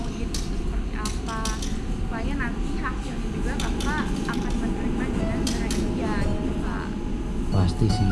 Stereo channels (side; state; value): both; identical; correlation 1.00